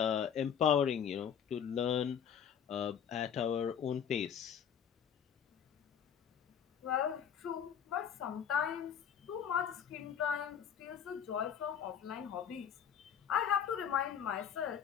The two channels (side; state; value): right; quieter; 8.3 dB